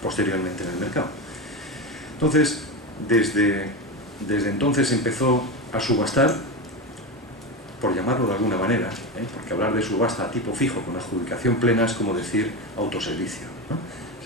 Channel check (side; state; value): both; normal; correlation 0.18